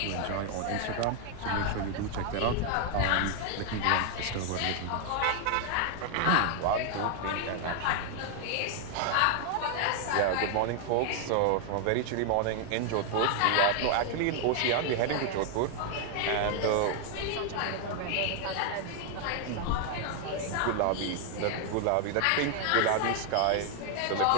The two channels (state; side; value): different; both; correlation 0.00